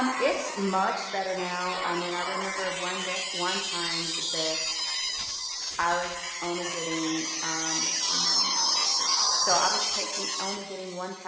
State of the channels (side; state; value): both; identical; correlation 1.00